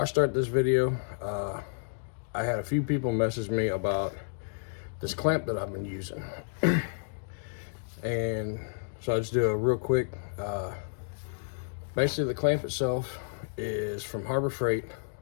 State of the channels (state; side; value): silent; right; digital silence